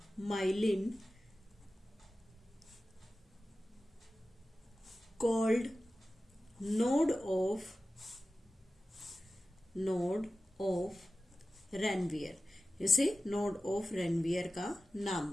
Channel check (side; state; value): both; normal; correlation 0.95